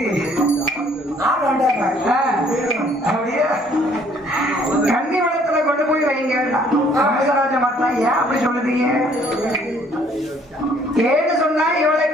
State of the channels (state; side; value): normal; both; correlation 0.61